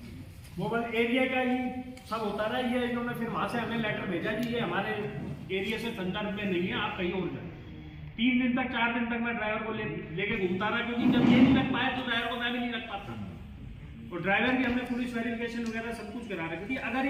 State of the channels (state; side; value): identical; both; correlation 1.00